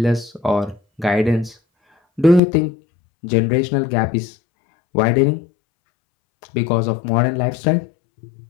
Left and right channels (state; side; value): drops out; right; at 2.4 s